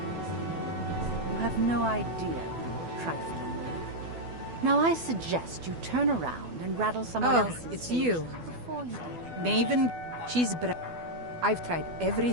You have no idea who you're trifling with. Now I suggest you turn around and rattle someone else's it's cage you. before you do. Maven, she's I've tried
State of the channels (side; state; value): left; late; 12 ms